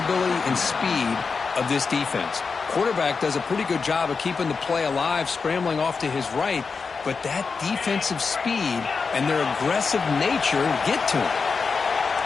and speed of this defense. Quarterback does a pretty good job of keeping the play alive, scrambling off to his right, but that defensive speed and their aggressive nature get to him.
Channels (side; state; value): right; quieter; 5.0 dB